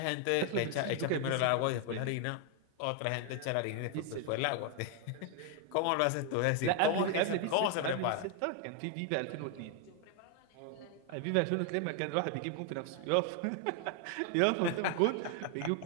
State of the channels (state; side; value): different; both; correlation 0.00